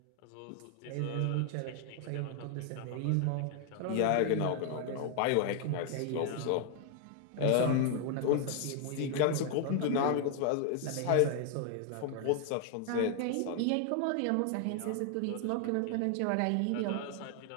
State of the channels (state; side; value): different; both; correlation 0.00